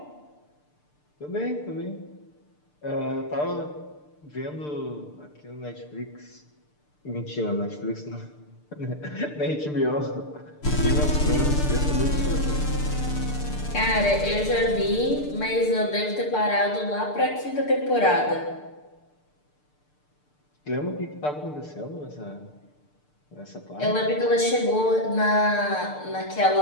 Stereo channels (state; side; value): late; right; 6.7 ms